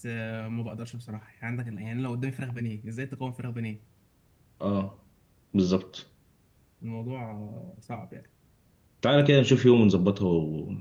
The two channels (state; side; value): identical; both; correlation 1.00